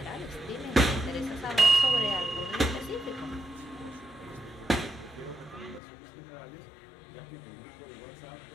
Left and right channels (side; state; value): right; drops out; at 5.8 s